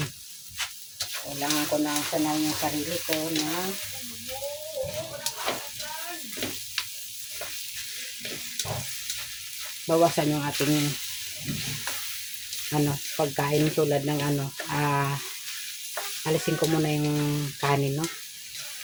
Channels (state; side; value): identical; both; correlation 1.00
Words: Kailangan ko na sanay yung sarili ko na bawasan yung ating pagkain tulad ng alisin ko muna yung kanin, no?